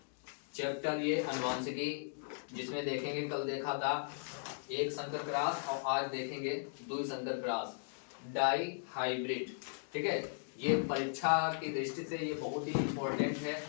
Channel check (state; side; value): silent; right; digital silence